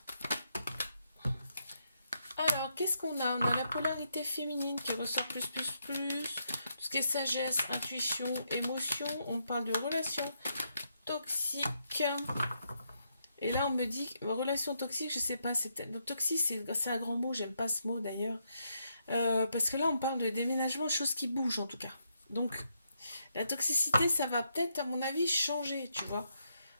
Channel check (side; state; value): both; inverted; correlation -0.79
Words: Alors, qu'est-ce qu'on a? On a la polarité féminine qui ressort plus. Tout ce qui est sagesse, intuition, émotion. On parle de relations toxiques. Et là, on me dit, relation toxique, je sais pas, toxique, c'est un grand mot, j'aime pas ce mot d'ailleurs. Parce que là, on parle de déménagement, chose qui bouge en tout cas. Donc, la toxicité, ça va peut-être, à mon avis, changer, tu vois.